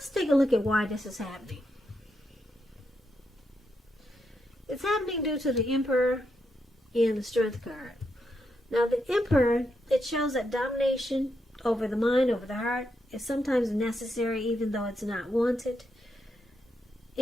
take a look at why this is happening. It's happening due to the Emperor and the Strength card. Now, the Emperor, it shows that domination over the mind, over the heart, is sometimes necessary even though it's not wanted.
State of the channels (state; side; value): normal; both; correlation 0.82